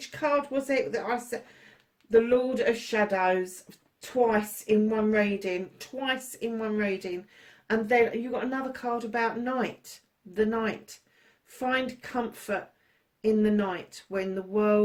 card was it that I said? the Lord of Shadows twice in one reading. And then you've got another card about night, the night. Find comfort in the night when the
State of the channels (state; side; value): identical; both; correlation 1.00